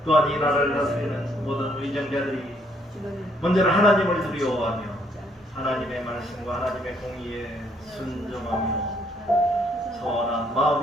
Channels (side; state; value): both; normal; correlation 0.68